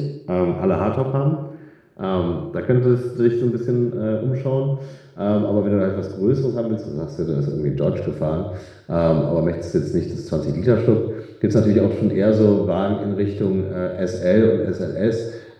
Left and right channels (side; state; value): both; identical; correlation 1.00